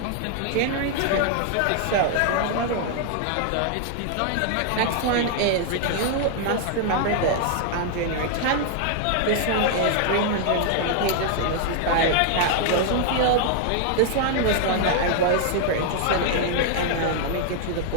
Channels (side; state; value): both; different; correlation 0.00